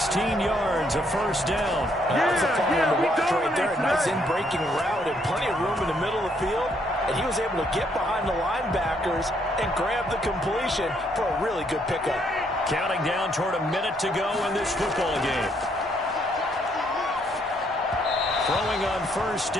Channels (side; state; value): both; normal; correlation 0.71